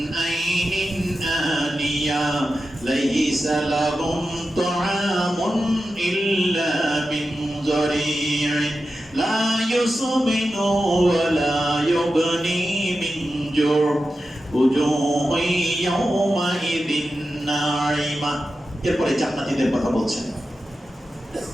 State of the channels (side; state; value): both; normal; correlation 0.91